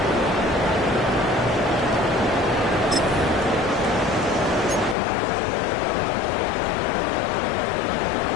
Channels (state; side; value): drops out; right; at 5.0 s